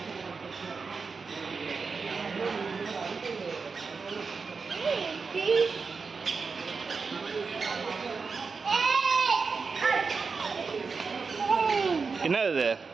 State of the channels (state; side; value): quieter; left; 4.9 dB